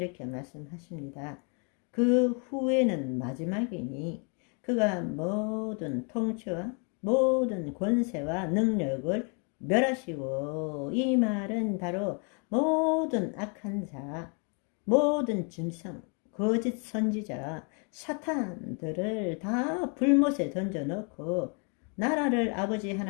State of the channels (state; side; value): quieter; right; 37.0 dB